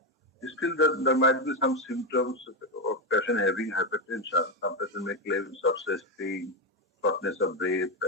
Still, there might be some symptoms of patient having hypertension. Some patient may claim chest pain, shortness of breath,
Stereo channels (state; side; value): normal; both; correlation 0.09